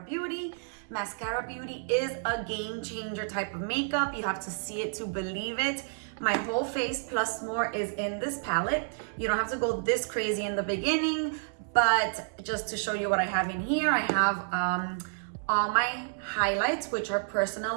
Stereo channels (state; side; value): silent; left; 58 dB below the other